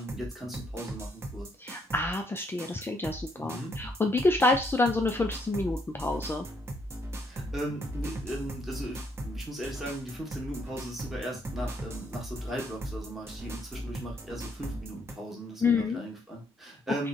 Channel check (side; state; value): both; normal; correlation 0.72